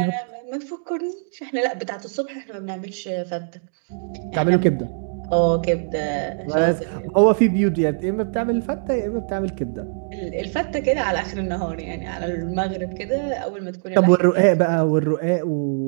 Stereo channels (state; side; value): silent; left; digital silence